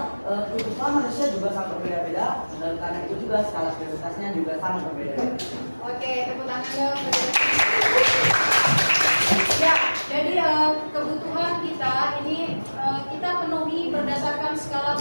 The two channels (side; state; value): both; inverted; correlation -1.00